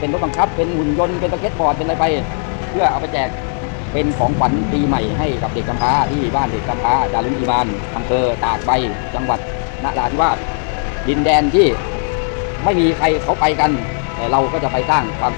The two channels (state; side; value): silent; right; 56 dB below the other